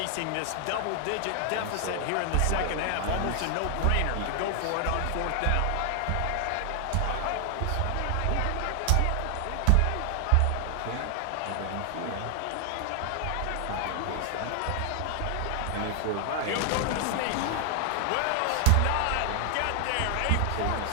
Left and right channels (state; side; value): different; both; correlation 0.00